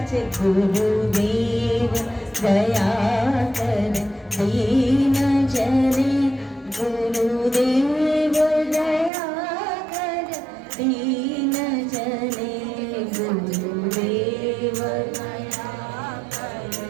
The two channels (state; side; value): drops out; left; at 9.1 s